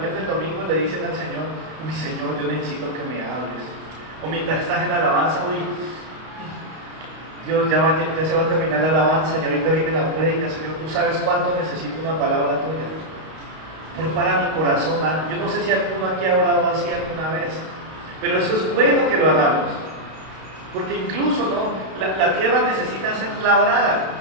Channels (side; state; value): left; late; 32 ms